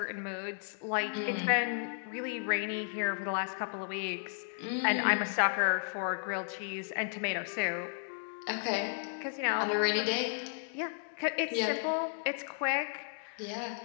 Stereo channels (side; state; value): right; silent; digital silence